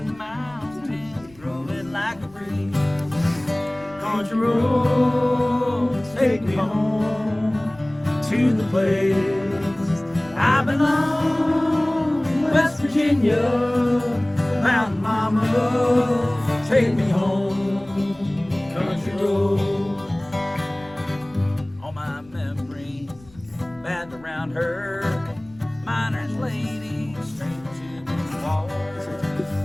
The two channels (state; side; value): noise; left; rumble, 25 dB below the sound